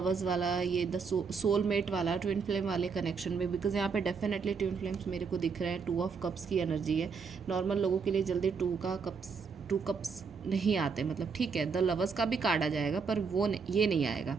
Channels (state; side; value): quieter; left; 5.5 dB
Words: वाला, ये द सोलमेट वाला, ट्विन फ्लेम वाले कनेक्शन में। बिकॉज यहाँ पे डेफिनेटली ट्विन फ्लेम्स मेरे को दिख रहे हैं। 2 ऑफ कप्स की एनर्जी है। नॉर्मल लोगों के लिए जल्दी 2 कप्स नहीं आते, मतलब ठीक है, द लवर्स का भी कार्ड आ जाएगा पर ये नहीं आएगा।